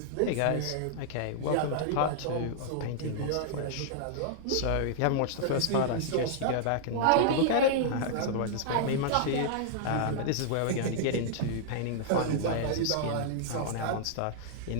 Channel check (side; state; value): both; different; correlation -0.01